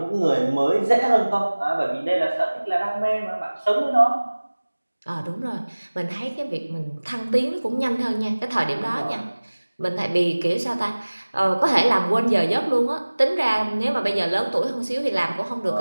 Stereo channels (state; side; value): inverted; both; correlation -1.00